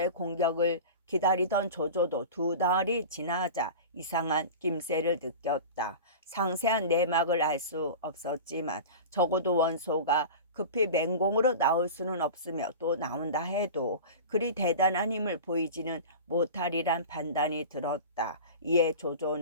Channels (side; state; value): both; inverted; correlation -0.32